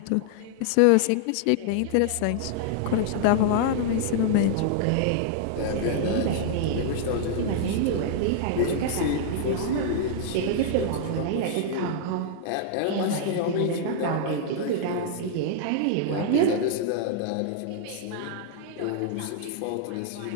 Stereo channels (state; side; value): different; both; correlation -0.01